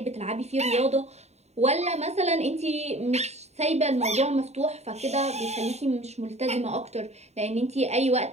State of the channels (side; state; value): left; late; 0.32 ms